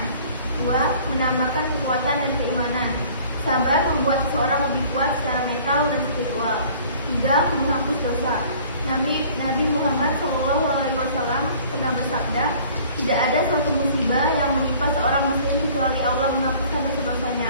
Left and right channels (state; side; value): inverted; both; correlation -0.51